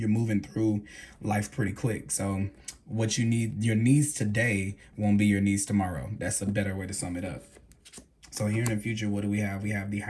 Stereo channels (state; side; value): identical; both; correlation 1.00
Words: moving through life pretty quick. So what you need, your needs today won't be your needs tomorrow. That's a better way to sum it up. So here in the future, what do we have? We have the